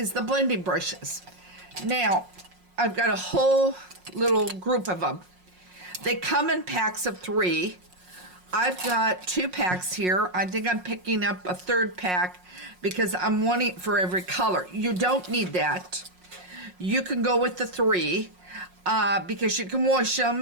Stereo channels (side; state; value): left; late; 5.5 ms